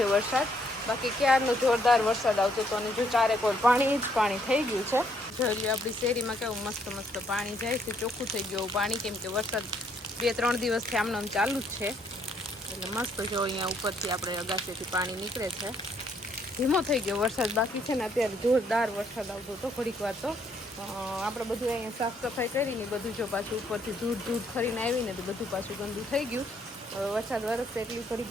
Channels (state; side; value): normal; both; correlation 0.70